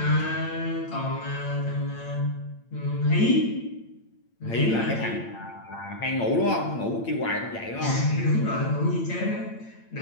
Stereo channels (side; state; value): right; late; 8.9 ms